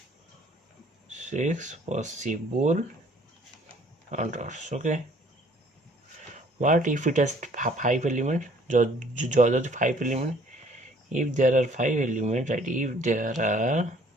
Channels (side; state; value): both; normal; correlation 0.58